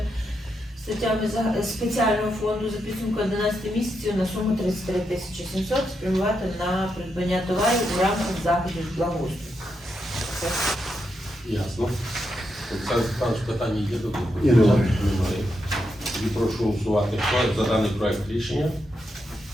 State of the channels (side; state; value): both; normal; correlation 0.83